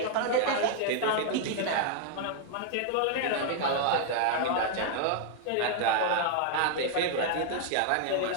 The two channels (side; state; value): both; different; correlation 0.00